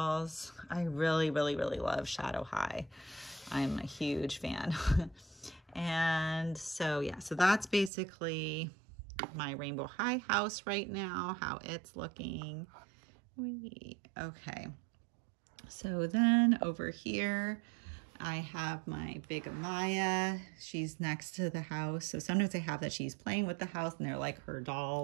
I really, really, really love Shadow High. I'm a huge fan. And so, yeah, so that's basically my Rainbow High house right now, how it's looking. Okay. So then over here, I have my big Amaya. She's next to the house. So sometimes I have that she's playing with the house and they're like her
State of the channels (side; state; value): left; drops out; at 7.9 s